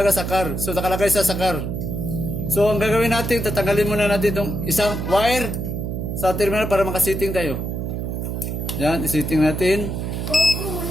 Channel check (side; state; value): right; noise; hum, 3 dB below the sound